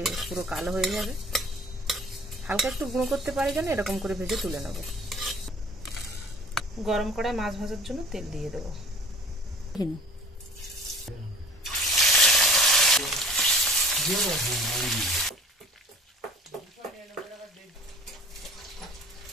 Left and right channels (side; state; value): both; normal; correlation 0.47